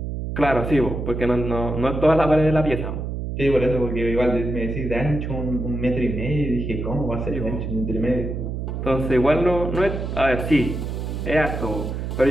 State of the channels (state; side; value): noise; right; hum, 4 dB below the sound